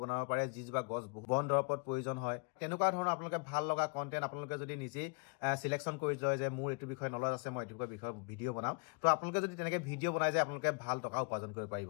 বনাব পাৰে যিজোপা গছ বন দৰৱত প্ৰয়োজন হয় তেনেকুৱা ধৰণৰ আপোনালোকে ভাল লগা কন্টেন্ট আপোনালোকে যদি নিজেই সিলেকশ্যন কৰি লয় যে মোৰ এইটো বিষয়ে নলেজ আছে মই এইটো বিষয়ে ভিডিও বনাম তো আপোনালোকে যদি তেনেকৈ ভিডিও বনাই যায় আপোনালোকে ভাল টকা উপাৰ্জন কৰিব পাৰিব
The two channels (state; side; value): quieter; right; 35.4 dB